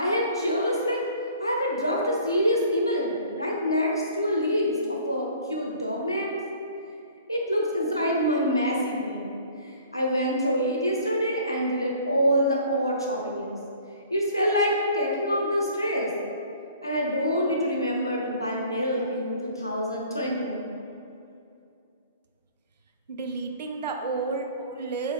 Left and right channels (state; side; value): inverted; both; correlation -0.52